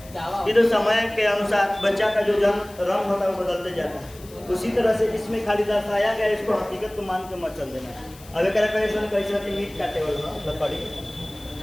ये तो समय के अनुसार बच्चा का जो जन्म रंग होता है वो बदलते जाता है। उसी तरह से इसमें खाली दर्शाया गया, इसको हकीकत को मान के मत चल देना। अब एक कैसे मीट काटे वाला लकड़ी,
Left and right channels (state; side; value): noise; left; hiss, 21 dB below the sound